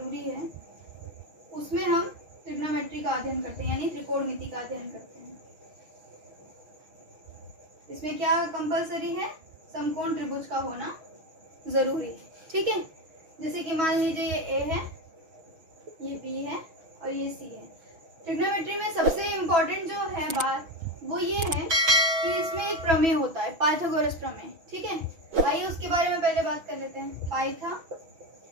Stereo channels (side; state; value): left; late; 6.2 ms